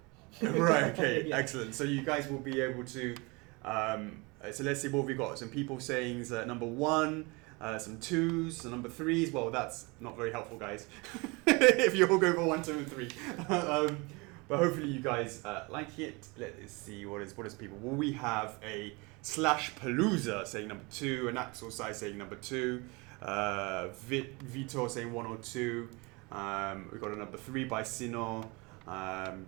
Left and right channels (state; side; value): quieter; left; 27.0 dB